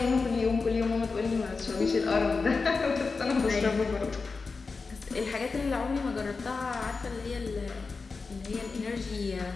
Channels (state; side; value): quieter; right; 4.4 dB